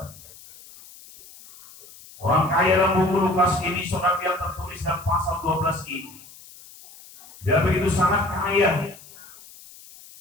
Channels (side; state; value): left; noise; hiss, 21 dB below the sound